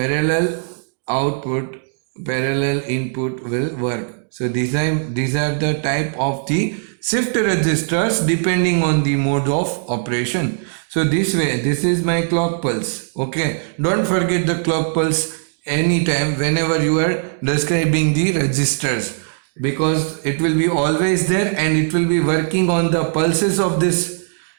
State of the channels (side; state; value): left; silent; digital silence